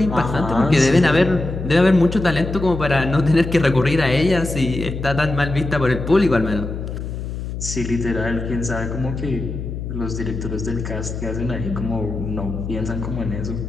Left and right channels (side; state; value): left; noise; hum, 6 dB below the sound